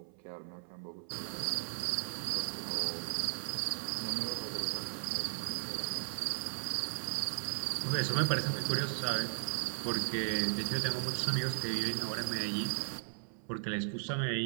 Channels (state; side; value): silent; left; 54 dB below the other